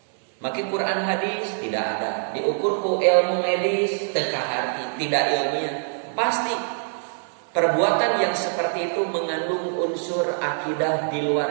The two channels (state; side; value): silent; left; 63 dB below the other